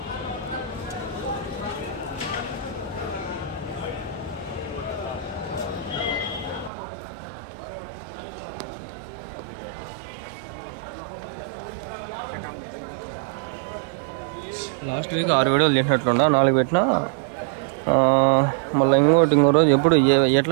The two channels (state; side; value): drops out; left; at 6.7 s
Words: లాస్ట్ వీక్ 6 వీడియోలు చేసినట్లున్నా, 4 పెట్టినా. మళ్ళీ ఇంకో రోజు ఎప్పుడు